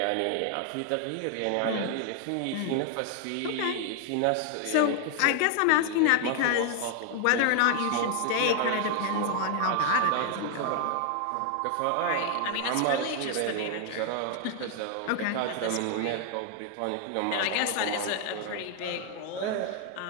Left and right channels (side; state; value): both; different; correlation 0.00